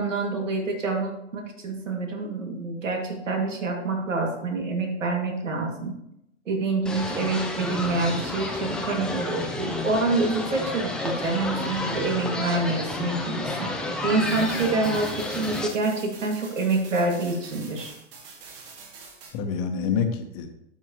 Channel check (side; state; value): both; normal; correlation 0.11